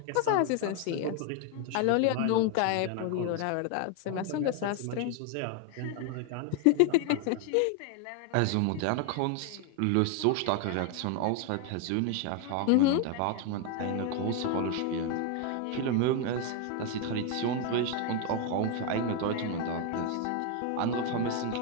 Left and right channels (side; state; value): both; different; correlation 0.01